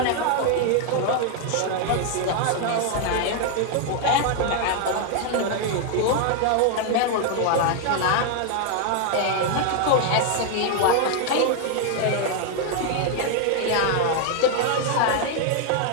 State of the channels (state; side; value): different; both; correlation 0.00